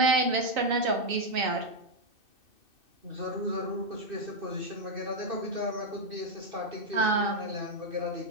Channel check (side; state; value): left; late; 2.6 ms